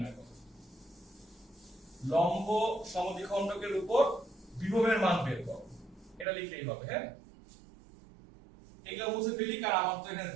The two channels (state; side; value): drops out; left; at 6.2 s